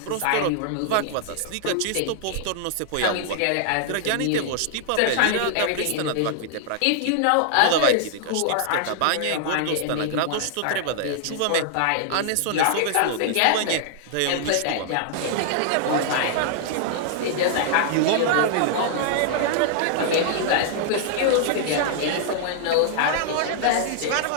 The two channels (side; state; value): both; different; correlation -0.01